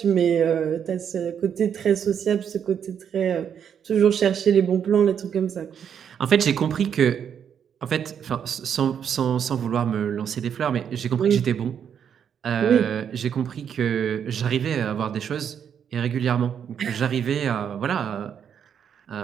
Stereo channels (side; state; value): left; quieter; 8.2 dB